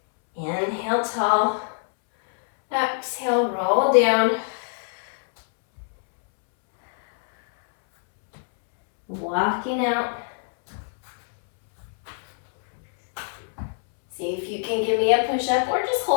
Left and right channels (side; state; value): right; silent; 63 dB below the other